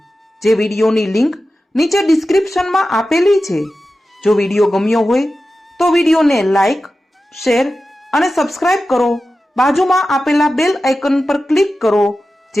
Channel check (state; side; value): normal; both; correlation 0.93